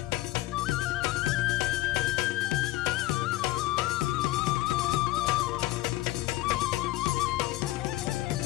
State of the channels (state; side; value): quieter; right; 17.4 dB